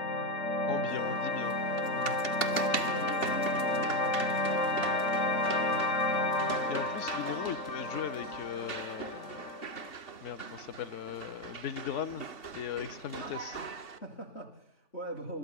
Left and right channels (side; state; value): right; late; 2.7 ms